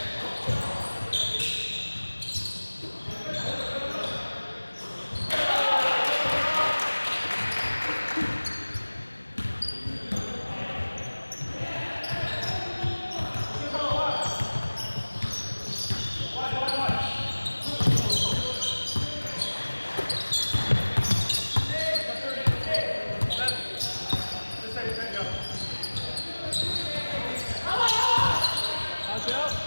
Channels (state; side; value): inverted; both; correlation -1.00